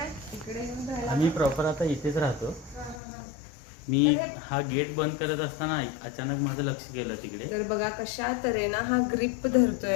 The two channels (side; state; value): right; drops out; at 3.0 s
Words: इकडे येऊन राहिला? आम्ही प्रॉपर आता इथेच राहतो. मी हा गेट बंद करत असताना अचानक माझं लक्ष गेलं तिकडे. तर बघा कशा तऱ्हेनं हा ग्रिप